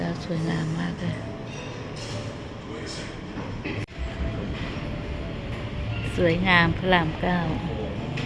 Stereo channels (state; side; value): identical; both; correlation 1.00